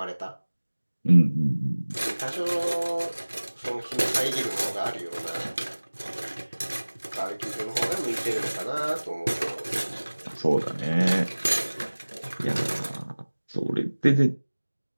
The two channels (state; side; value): inverted; both; correlation -1.00